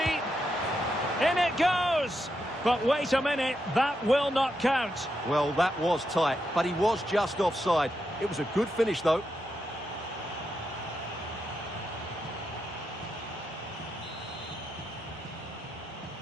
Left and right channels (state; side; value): normal; both; correlation 0.84